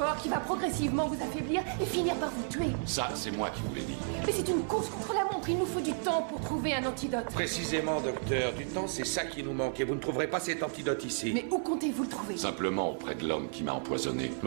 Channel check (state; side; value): silent; left; 56 dB below the other